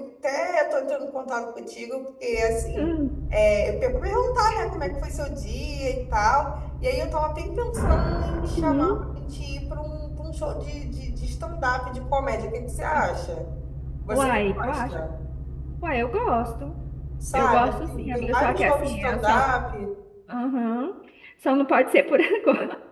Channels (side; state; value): both; identical; correlation 1.00